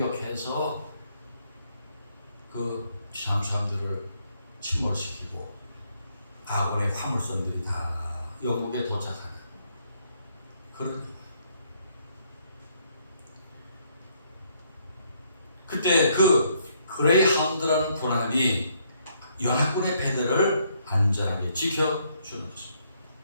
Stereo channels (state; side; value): inverted; both; correlation -0.71